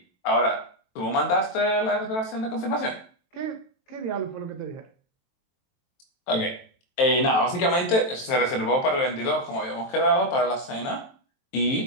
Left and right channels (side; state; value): right; late; 23 ms